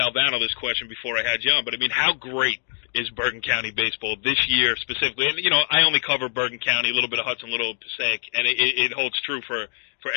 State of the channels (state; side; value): silent; right; digital silence